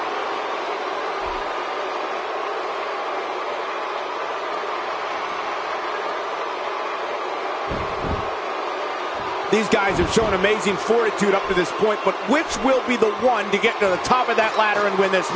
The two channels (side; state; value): both; identical; correlation 1.00